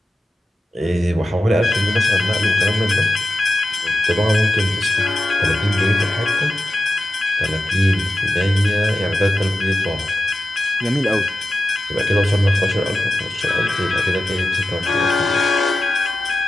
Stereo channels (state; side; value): normal; both; correlation 0.92